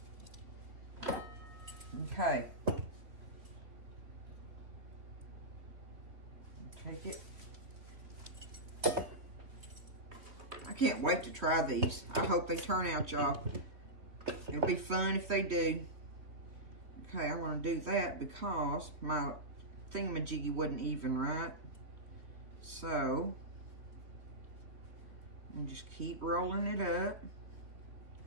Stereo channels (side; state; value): left; late; 3.2 ms